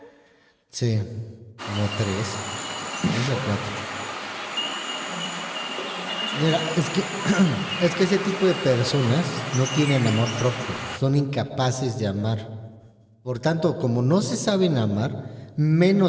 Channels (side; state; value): both; identical; correlation 1.00